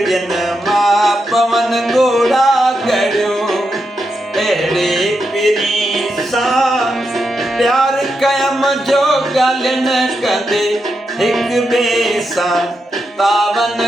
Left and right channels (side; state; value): both; normal; correlation 0.85